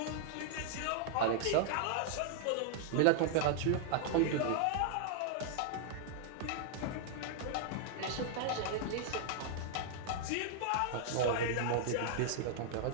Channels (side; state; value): both; different; correlation -0.01